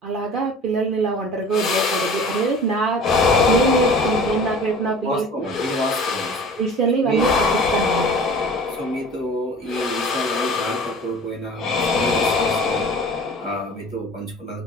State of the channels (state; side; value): normal; both; correlation 0.43